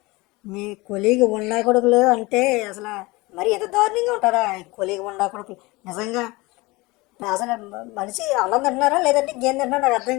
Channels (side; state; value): right; quieter; 22.9 dB